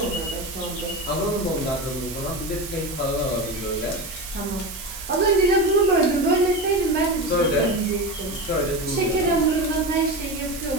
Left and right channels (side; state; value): right; noise; hiss, 11 dB below the sound